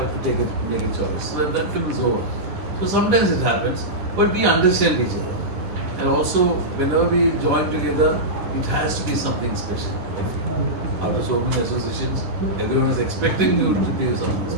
to make a choice. So that film is over. So sometimes it happens, but we understand each other. And also, whenever we join together, it has to be something special. After so many associations, everyone is expecting you to be something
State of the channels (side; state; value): left; late; 10 ms